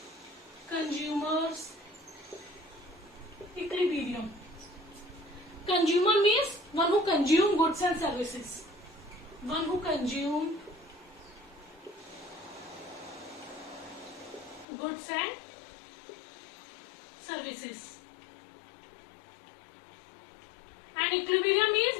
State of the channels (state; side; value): drops out; right; at 14.7 s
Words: consumers equilibrium. Consumer means one who consume goods and services. One who consume goods and services. And equilibrium means